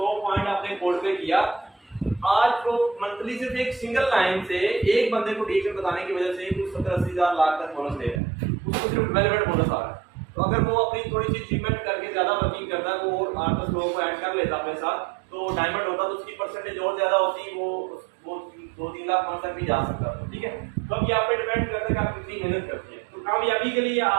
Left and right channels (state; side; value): drops out; left; at 8.2 s